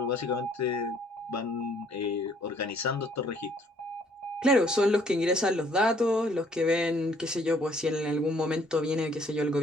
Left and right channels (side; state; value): both; normal; correlation 0.62